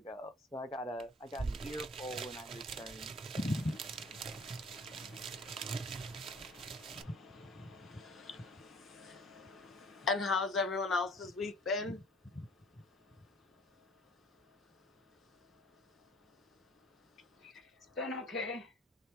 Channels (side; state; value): both; normal; correlation 0.52